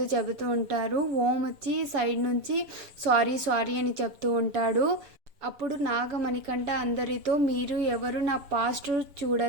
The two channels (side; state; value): left; late; 7.0 ms